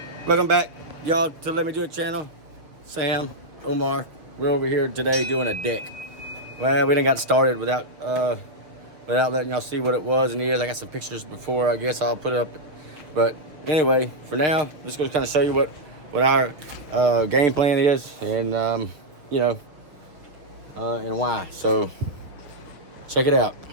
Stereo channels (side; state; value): left; late; 6.3 ms